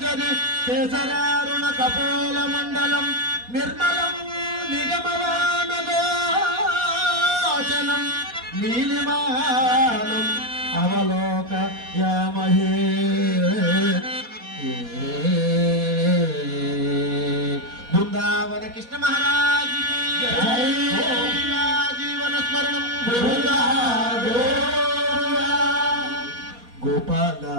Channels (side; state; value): left; late; 4.2 ms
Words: కేసరారుణ కపోల మండలం నిర్మలం నిగమవాన గోచనం నీలిమానం అవలోక యామహే బృందావన కృష్ణ మహారాజ్ జీవన స్మరణం గోపాల